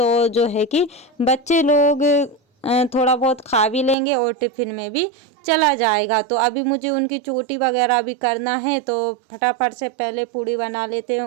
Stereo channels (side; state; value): left; drops out; at 4.0 s